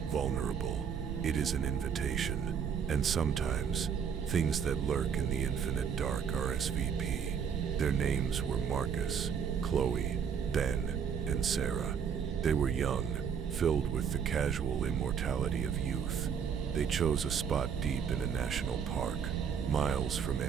vulnerable. It is an invitation, and sometimes, things that lurk in the infinite dark are SVP. Their names were Marcus, Chloe, Ben, and Sarah. They were young, filled with the casual immortality of youth. They chose a spot deep in a national park, miles from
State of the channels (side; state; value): left; quieter; 7.3 dB